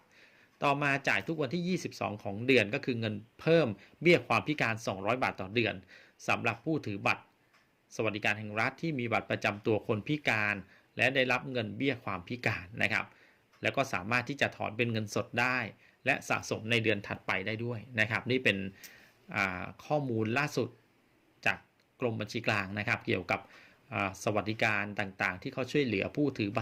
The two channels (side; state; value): both; identical; correlation 1.00